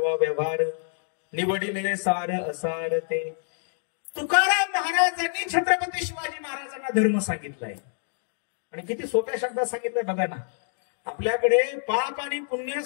व्यवहार, निवडिले सार असार ते. तुकाराम महाराजांनी छत्रपती शिवाजी महाराजांना धर्म सांगितलाय आणि किती सोप्या शब्दात सांगितलंय बघा ना. आपल्याकडे पाप आणि पुण्य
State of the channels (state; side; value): silent; right; digital silence